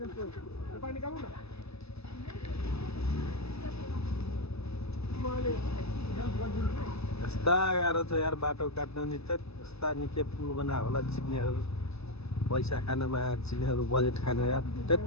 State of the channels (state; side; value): late; right; 0.79 ms